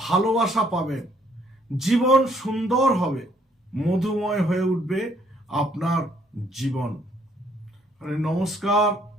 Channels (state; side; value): normal; both; correlation 0.65